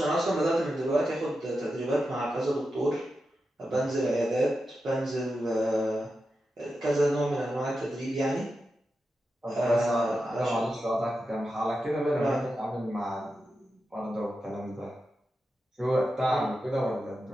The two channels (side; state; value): both; normal; correlation 0.89